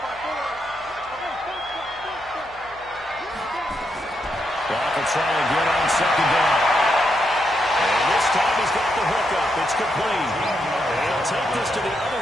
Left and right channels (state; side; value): noise; left; hum, 25 dB below the sound